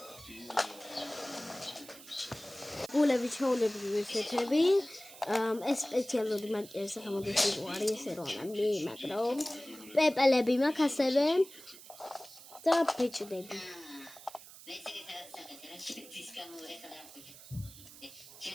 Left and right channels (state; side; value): noise; right; hiss, 18 dB below the sound